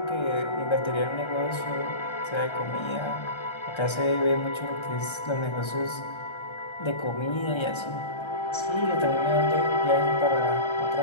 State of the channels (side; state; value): right; late; 1.3 ms